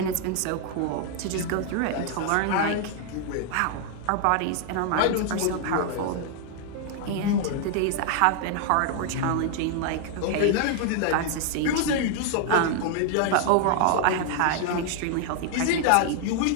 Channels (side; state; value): both; different; correlation 0.00